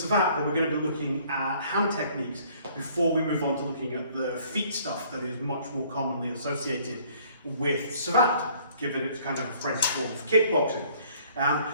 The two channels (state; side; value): inverted; both; correlation -0.59